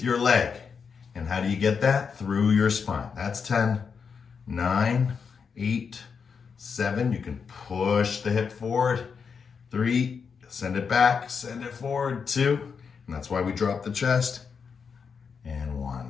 your leg. And how do you get that? Through your spine. That's 10, 9, 8, 7. You can push the hip forward. 3, send it back, send it forward. 2, and that's why we drop the chest. And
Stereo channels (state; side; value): quieter; right; 6.0 dB